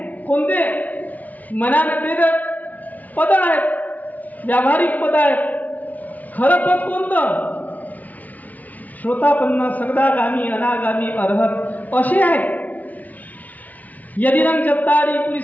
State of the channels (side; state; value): right; late; 0.074 ms